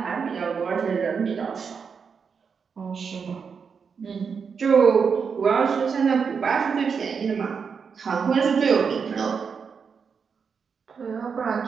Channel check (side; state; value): left; quieter; 6.0 dB